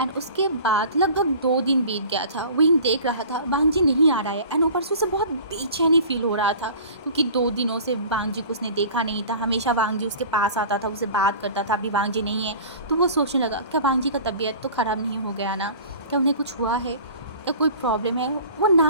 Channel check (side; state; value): both; inverted; correlation -0.42